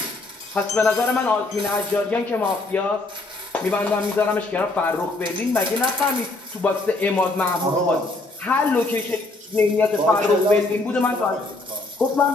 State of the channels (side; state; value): right; quieter; 3.1 dB